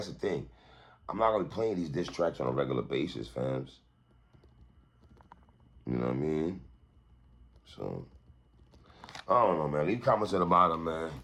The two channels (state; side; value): identical; both; correlation 1.00